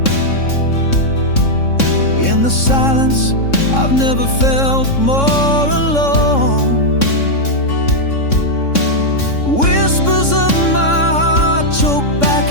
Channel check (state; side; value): late; right; 3.6 ms